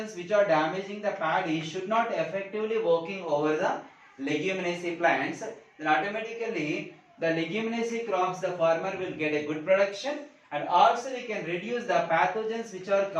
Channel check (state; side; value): identical; both; correlation 1.00